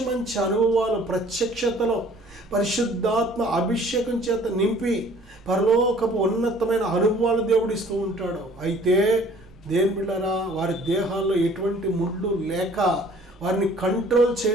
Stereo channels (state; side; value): normal; both; correlation 0.53